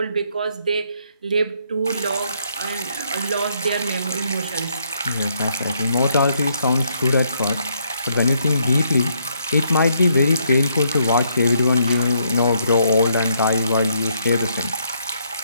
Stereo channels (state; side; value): inverted; both; correlation -0.72